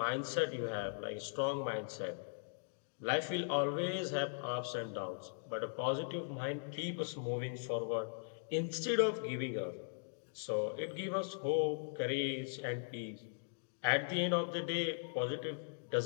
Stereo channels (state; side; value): silent; right; digital silence